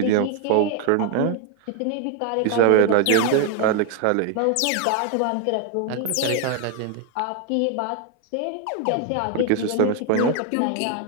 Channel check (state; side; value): different; both; correlation 0.01